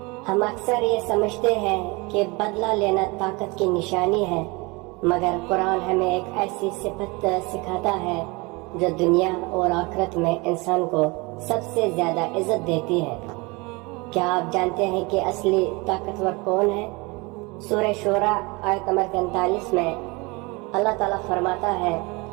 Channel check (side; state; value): left; quieter; 26.1 dB